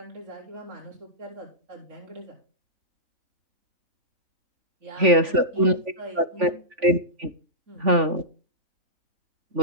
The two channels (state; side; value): late; left; 3.5 ms